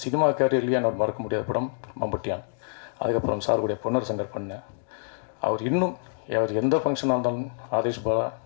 சினிமா கேரியர்லேயே எனக்கு மறக்க முடியாத படம் மம்பட்டியான். அதுக்கப்புறம் சாருடைய பொன்னர் சங்கர் பண்ணேன். அவர் இன்னும் அவர் எந்த ஃபங்க்ஷனாக இருந்தாலும் ஆதேஷ் பாலா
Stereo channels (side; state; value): right; silent; digital silence